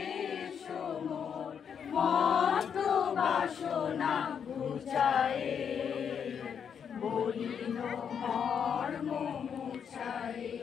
বাসনা বুঝায়, বলিল মর্ম মুছায়।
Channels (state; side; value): quieter; right; 7.5 dB